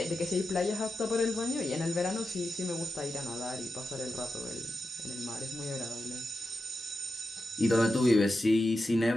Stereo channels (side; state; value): both; normal; correlation 0.90